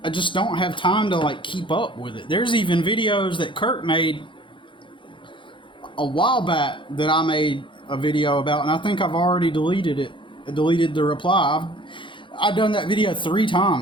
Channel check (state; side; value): late; right; 0.24 ms